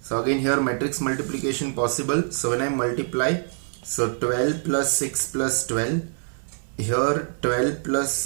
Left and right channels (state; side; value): silent; left; 60 dB below the other